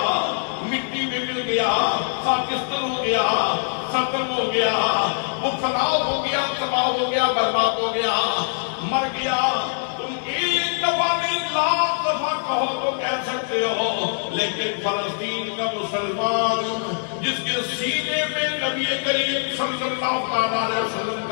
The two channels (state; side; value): silent; right; digital silence